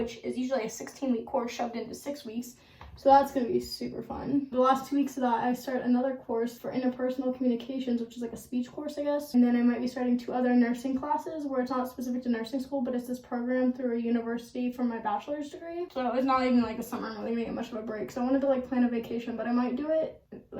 is usually a 16-week course shoved into 6 weeks. So that's going to be super fun. The last 2 weeks of that, I start another course for interpersonal communications, which is like a speech course, I guess. And then I might be starting 2 other nursing classes where it's not specific to nursing school, but it's this program through a university for my bachelor's degree. So it's not even like the summer. I'm really going to get much of a break. So I wanted to like plan a vacation, but I might do it,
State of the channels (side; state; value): both; identical; correlation 1.00